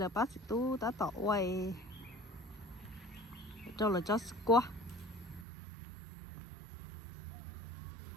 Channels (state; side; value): drops out; left; at 5.5 s